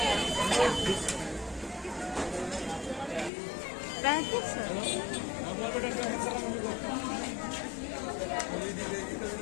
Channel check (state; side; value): drops out; right; at 3.3 s